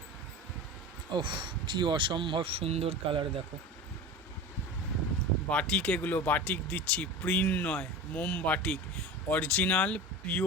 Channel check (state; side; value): normal; both; correlation 0.31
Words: ওহ, কি অসম্ভব সুন্দর কালার দেখো। বাটিক, এগুলো বাটিক দিচ্ছি, প্রিন্ট নয়, মোম বাটিক, অরিজিনাল